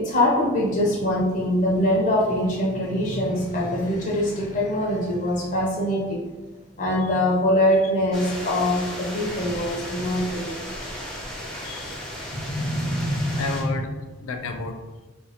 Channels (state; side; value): normal; both; correlation 0.34